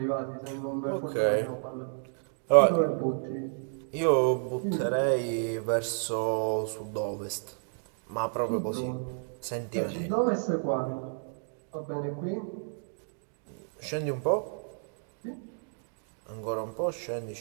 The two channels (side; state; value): left; silent; digital silence